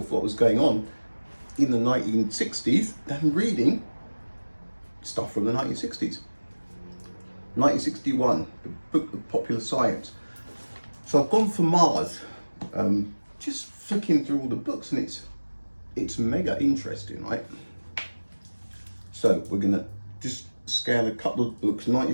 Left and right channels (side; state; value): both; inverted; correlation -1.00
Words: what was going on in the 1960s than reading stuff from the 1960s. 1961, the book of popular science. So I've gone for Mars, just flicking through all the books, and it's mega interesting, right? So we're gonna just scan a couple of books,